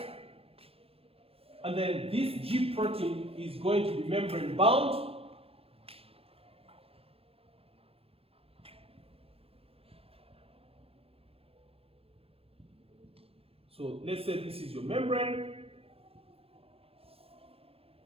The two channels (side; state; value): left; late; 0.28 ms